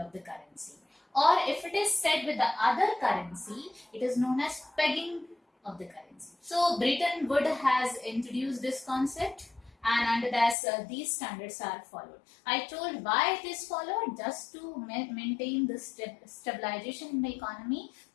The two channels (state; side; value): drops out; right; at 10.6 s